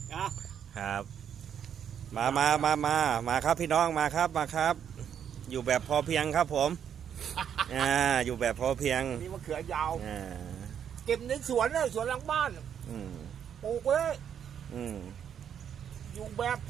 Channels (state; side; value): quieter; left; 8.6 dB